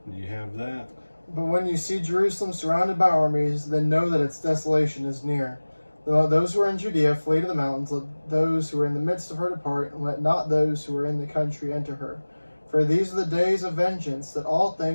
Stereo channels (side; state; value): both; inverted; correlation -1.00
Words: do you have that? But when you see Jerusalem surrounded by armies, then know that its desolation is near. Let those who are in Judea flee to the mountains, let those who are in the midst of her depart, and let not those who are in the country enter her. For these are the days of vengeance, that all